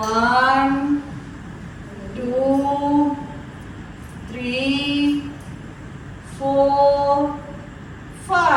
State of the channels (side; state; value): both; identical; correlation 1.00